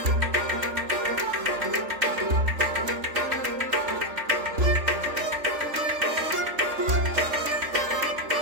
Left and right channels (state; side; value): late; left; 3.4 ms